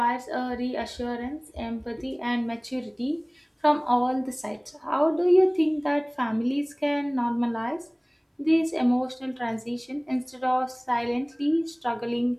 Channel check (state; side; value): identical; both; correlation 1.00